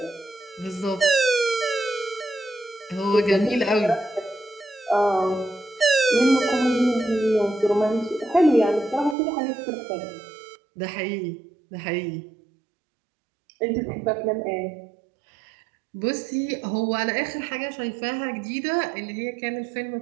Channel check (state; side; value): drops out; left; at 9.2 s